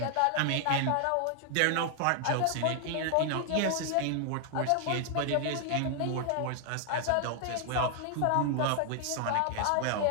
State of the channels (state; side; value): different; both; correlation 0.00